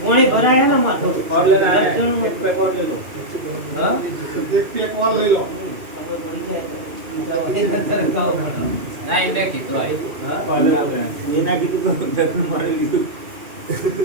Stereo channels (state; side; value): late; left; 2.7 ms